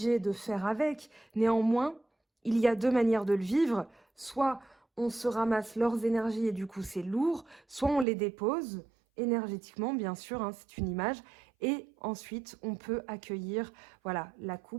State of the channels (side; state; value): left; drops out; at 8.1 s